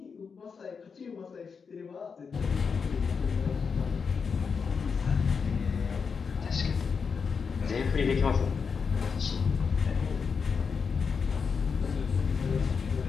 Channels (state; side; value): quieter; right; 5.7 dB